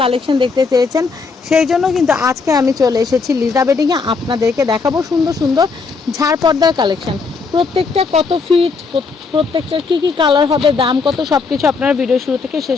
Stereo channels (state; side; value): quieter; right; 4.7 dB